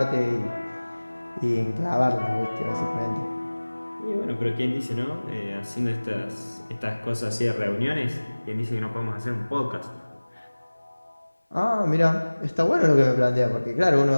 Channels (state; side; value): inverted; both; correlation -1.00